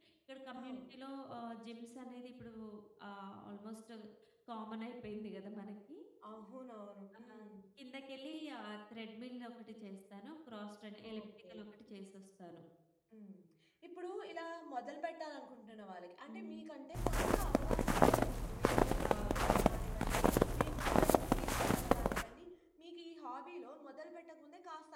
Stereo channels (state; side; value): identical; both; correlation 1.00